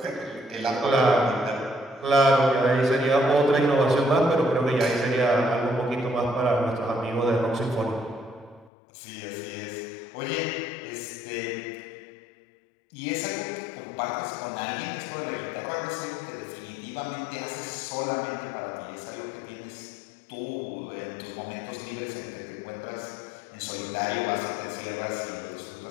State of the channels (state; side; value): drops out; right; at 8.7 s